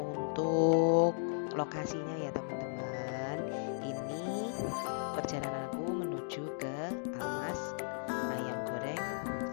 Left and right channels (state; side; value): silent; right; digital silence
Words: untuk lokasinya ya teman-teman. Ini perjalananku menuju ke Almaz ayam goreng